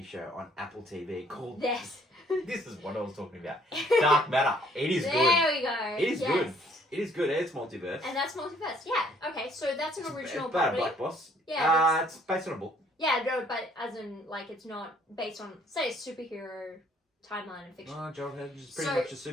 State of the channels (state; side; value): normal; both; correlation 0.62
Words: show on Apple TV called... Yes. This is what I was talking about. Dark Matter. It is good. There we go. It is good. It is good. It's multiverse. And that's multiverse. Yeah. Okay, so that's an original It's about property. a black boss. Yeah. It's based on a book. Yeah, no, but as in, it's not based on, say, a superhero timeline and fiction. Oh, John Hedge is pretty much a